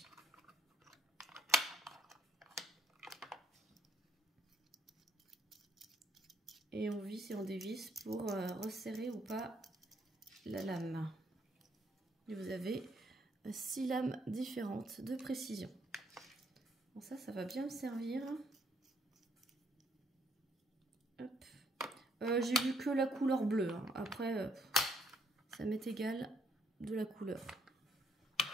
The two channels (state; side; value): normal; both; correlation 0.69